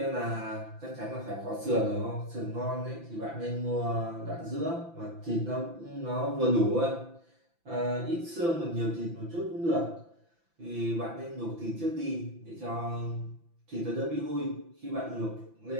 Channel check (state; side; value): late; left; 5.9 ms